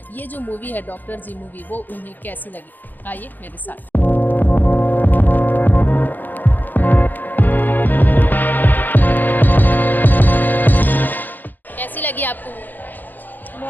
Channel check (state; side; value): late; right; 0.087 ms